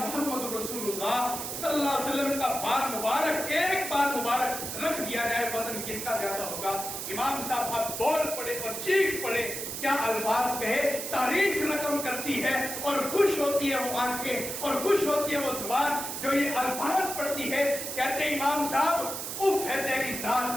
رسول اللہ صلی اللہ علیہ وسلم کا بال مبارک, ایک بال مبارک رکھ دیا جائے, وزن کتنا زیادہ ہوگا؟ امام صاحب اب بول پڑے اور چیخ پڑے, کیا الفاظ کہے, تاریخ رقم کرتی ہے اور خوش ہوتی ہے وہ آنکھیں اور خوش ہوتی ہے وہ زبان جو یہ الفاظ پڑھتی ہے. کہتے ہیں امام صاحب اف ہے تیری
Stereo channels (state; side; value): noise; right; hiss, 5 dB below the sound